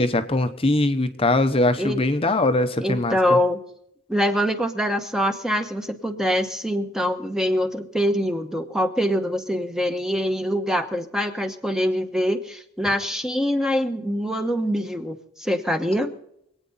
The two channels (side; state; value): both; normal; correlation 0.72